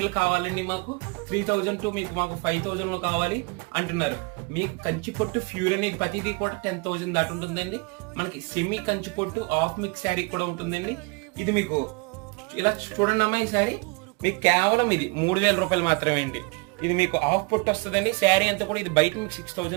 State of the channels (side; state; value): left; quieter; 29.4 dB